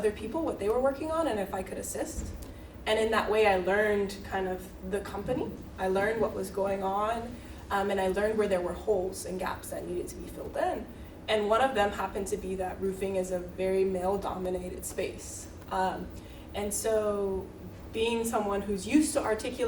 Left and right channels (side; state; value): both; identical; correlation 1.00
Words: people what they were working on and if I could assist. And in that way I learned kind of the company, I learned what was going on, and I learned where there were holes and gaps that needed to be filled in. And one of them happened to be that roofing is a very male-dominated space. And so being someone who's used to